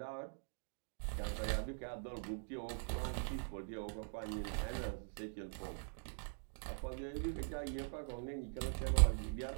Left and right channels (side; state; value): left; silent; digital silence